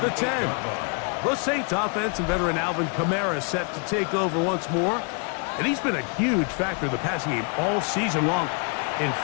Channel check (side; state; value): right; quieter; 38.7 dB